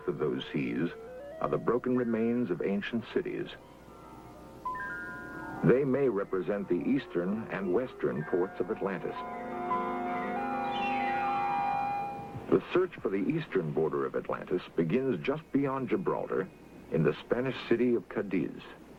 of those seas are the broken remains of ancient cities. They may represent the eastern and western ports of Atlantis. The search for the eastern border of Atlantis begins just beyond Gibraltar in the Spanish city of Cadiz.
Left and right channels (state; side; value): identical; both; correlation 1.00